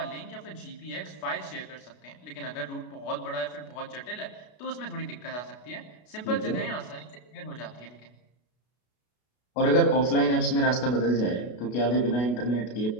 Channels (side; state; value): right; late; 33 ms